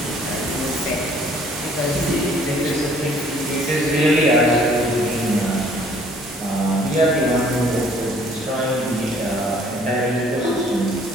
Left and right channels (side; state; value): both; normal; correlation 0.58